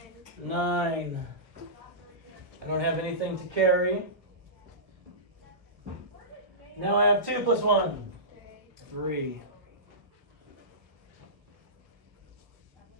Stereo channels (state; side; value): late; left; 1.1 ms